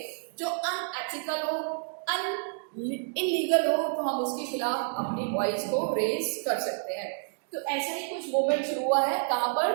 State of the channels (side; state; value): left; silent; digital silence